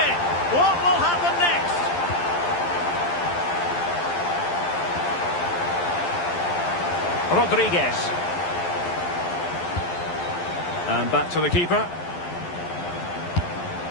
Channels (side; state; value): right; late; 11 ms